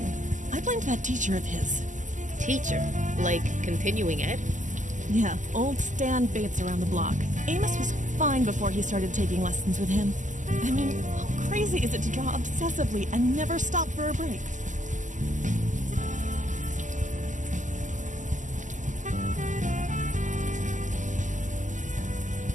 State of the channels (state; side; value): late; left; 0.37 ms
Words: I blamed that teacher of his. Teacher? Like continuing ed? Yeah, old Stan Bates around the block. Amos was fine before he started taking lessons with him. I mean, how crazy is it to draw obsessively and never stop for a break?